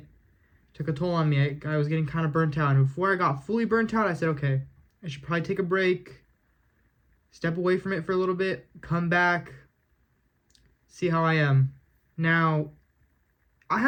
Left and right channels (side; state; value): both; identical; correlation 1.00